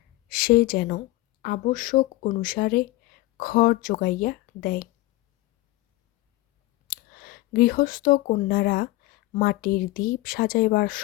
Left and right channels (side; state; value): right; quieter; 18.8 dB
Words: সে যেন আবশ্যক অনুসারে খড় যোগাইয়া দেয়। গৃহস্থ কন্যারা মাটির দীপ সাজাইবার